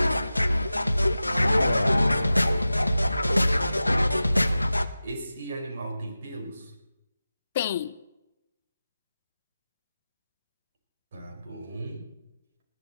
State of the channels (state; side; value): inverted; both; correlation -0.94